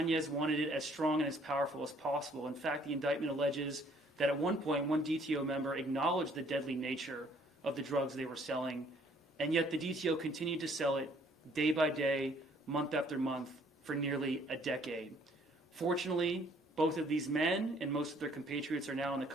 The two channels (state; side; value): normal; both; correlation 0.61